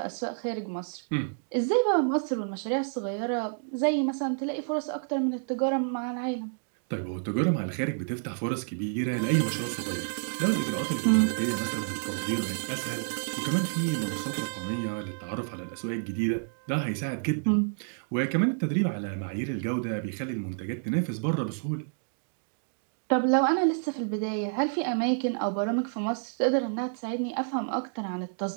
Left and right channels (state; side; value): silent; left; digital silence